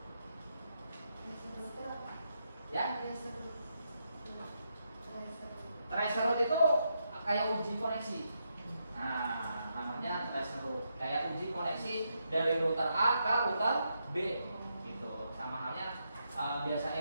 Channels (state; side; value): inverted; both; correlation -0.81